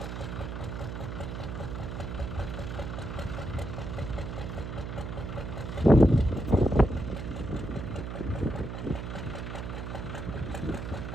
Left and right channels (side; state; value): right; noise; hum, 6 dB below the sound